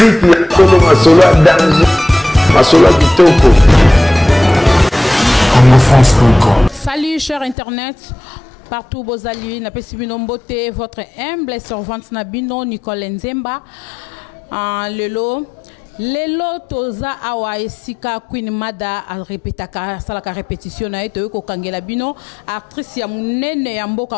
ya tolo masolo danger. Salut chers internet, partout vos alliés, n'a pas si beauté, votre humble servante Nabino Nicole Nzemba, Lelo toza awa esika Queen Mada a répétaka salaka répétition na eto ko kangela bino actrice ya munene ya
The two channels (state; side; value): drops out; right; at 7.6 s